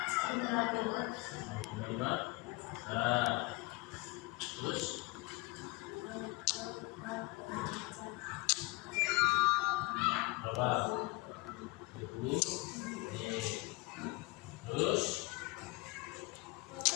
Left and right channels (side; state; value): right; quieter; 23.4 dB